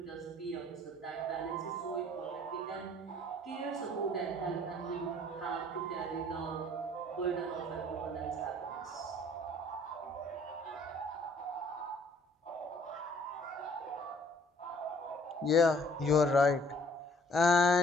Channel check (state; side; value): normal; both; correlation 0.59